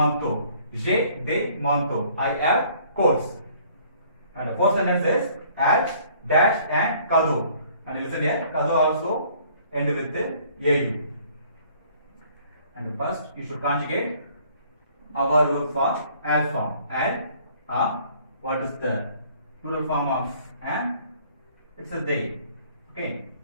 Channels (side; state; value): both; inverted; correlation -0.58